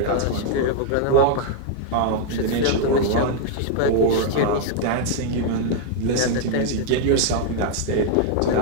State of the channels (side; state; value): both; different; correlation 0.00